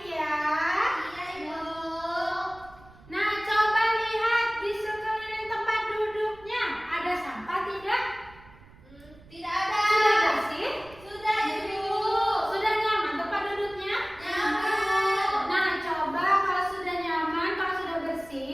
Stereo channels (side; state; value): right; noise; rumble, 23 dB below the sound